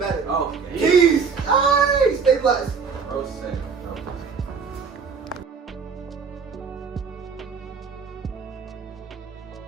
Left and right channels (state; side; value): quieter; left; 5.7 dB